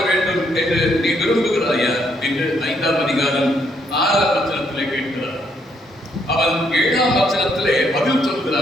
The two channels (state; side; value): normal; both; correlation 0.72